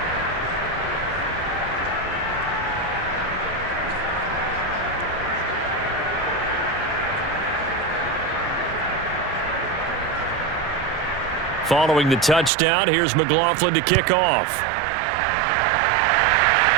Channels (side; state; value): left; drops out; at 12.5 s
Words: Following the touchdown, here's McLaughlin to kick off.